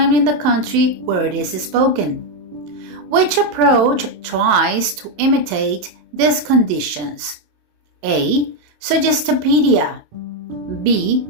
in the country where it is spoken. Which approach tries to imitate these conditions? A. Suggestopedia. B.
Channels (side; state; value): left; late; 27 ms